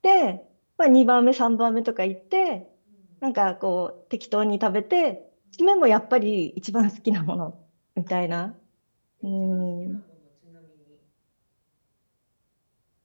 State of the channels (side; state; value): both; inverted; correlation -1.00